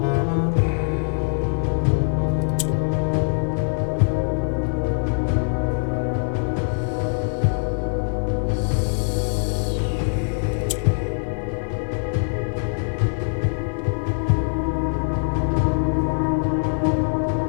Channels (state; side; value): silent; right; 64 dB below the other